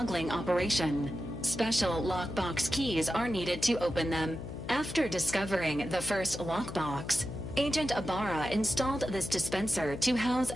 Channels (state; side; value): noise; left; hum, 9 dB below the sound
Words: operation. Special lockbox keys are needed to open them. After discovering the first lockbox, Agent Ibarra installed this dispenser to house